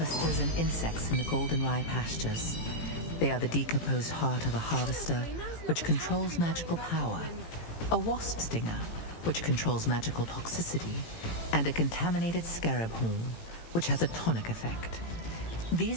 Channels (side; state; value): right; late; 18 ms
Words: and insects in the Goldenrye Pastures. They are the decomposed heart of a harvester, which controls magical power, a wasp stinger, which controls magical toxicity, and a contaminated scarab horn, which has a tonic effect.